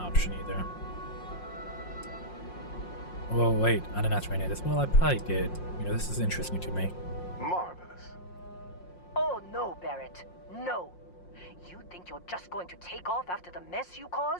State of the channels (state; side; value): late; right; 5.6 ms